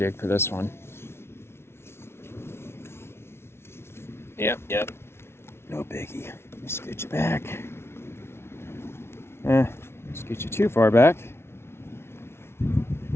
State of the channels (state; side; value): late; right; 0.12 ms